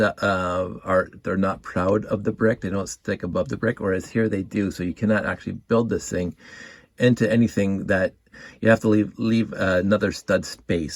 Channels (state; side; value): identical; both; correlation 1.00